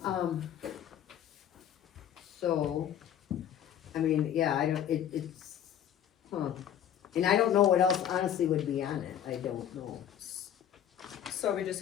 So, I mean, yeah, I don't, it's, and I don't know what else honestly would be on it, I don't know. So are we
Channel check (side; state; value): right; quieter; 9.9 dB